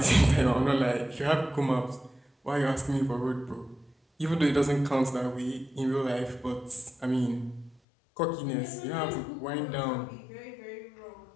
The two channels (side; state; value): right; drops out; at 7.8 s